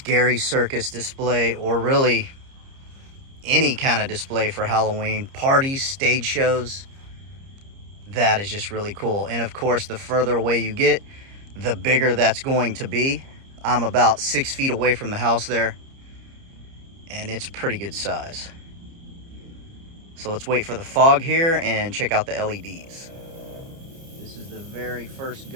circus display, or really any kind of display for Halloween, parties, stage shows. That is just really cool. And of course, the further away you get, the bigger that's going to be. I'm about 6 feet away from the house there, and it's pretty good size. So let's wait for the fog here and check out the LEDs. This is the very first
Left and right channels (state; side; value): late; left; 30 ms